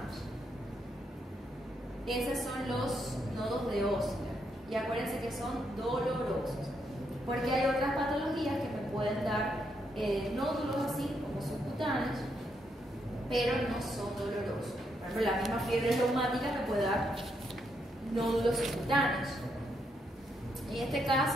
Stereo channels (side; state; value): both; normal; correlation 0.78